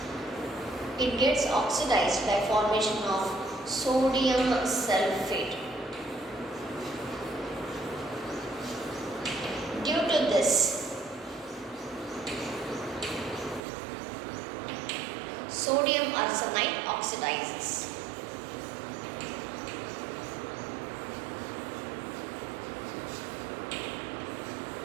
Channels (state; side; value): drops out; left; at 13.6 s